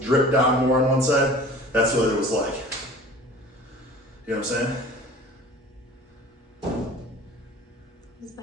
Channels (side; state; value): both; normal; correlation 0.43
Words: down more on one side. That's what it was like. You know what I'm saying? What's